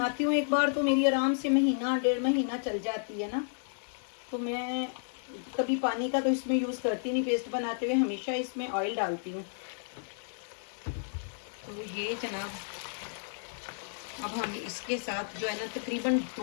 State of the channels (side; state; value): right; silent; 56 dB below the other